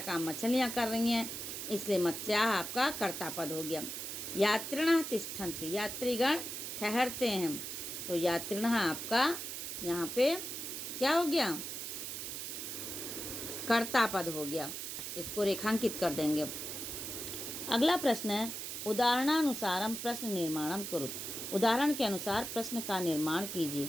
काम मछलियाँ कर रही हैं, इसलिए मत्स्याः आपका कर्ता पद हो गया। यात्रिणः तिष्ठन्ति, यात्रीगण ठहरते हैं, तो यात्रिणः आपका यहाँ पे क्या हो गया? कर्ता पद हो गया। इसको रेखांकित कर देंगे। अगला प्रश्न है उदाहरणानुसारम प्रश्न निर्माणम कुरुत। उदाहरण के अनुसार प्रश्न का निर्माण कीजिए।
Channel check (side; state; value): right; noise; hiss, 6 dB below the sound